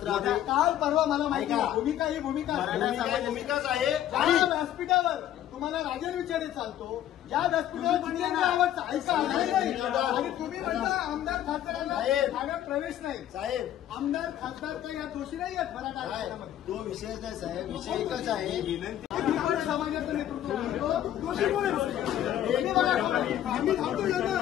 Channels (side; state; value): right; quieter; 11.8 dB